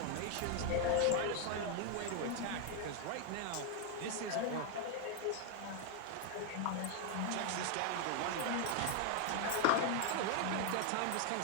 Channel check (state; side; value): different; both; correlation 0.01